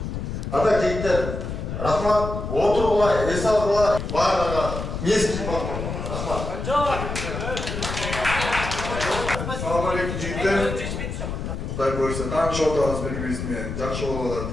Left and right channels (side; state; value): left; noise; rumble, 5 dB below the sound